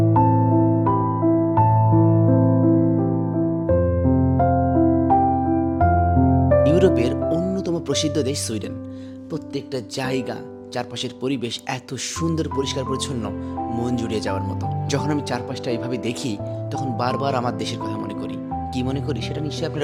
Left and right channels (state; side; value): identical; both; correlation 1.00